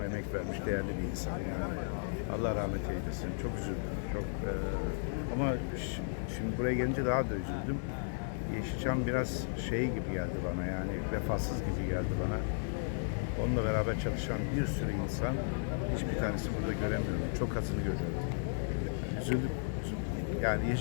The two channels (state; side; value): silent; right; digital silence